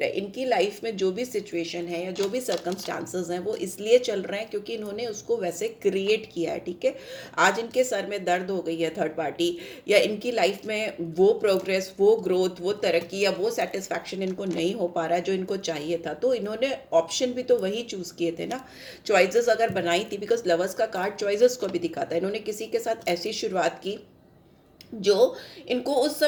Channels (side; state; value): both; identical; correlation 1.00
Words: है। इनकी लाइफ में जो भी सिचुएशन है या जो भी सर्कमस्टांसेस हैं वो इसलिए चल रहे हैं क्योंकि इन्होंने उसको वैसे क्रिएट किया है। ठीक है, आज इनके सर में दर्द हो गई है थर्ड पार्टी, या इनकी लाइफ में वो प्रोग्रेस, वो ग्रोथ, वो तरक्की या वो सेटिस्फैक्शन इनको नहीं हो पा रहा है जो इनको चाहिए था। तो इन्होंने ऑप्शन भी तो वही चूज किए थे ना, चॉइसेस अगर बनाई थी। बिकॉज लवर्स का कार्ड चॉइसेस को भी दिखाता है। इन्होंने किसी के साथ ऐसी शुरुआत की जो इनको उस